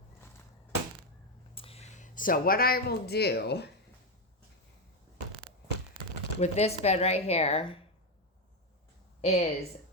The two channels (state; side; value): normal; both; correlation 0.08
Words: So what I will do with this bed right here is